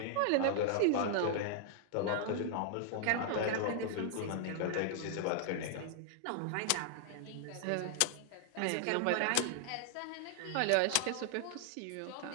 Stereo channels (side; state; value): both; different; correlation 0.00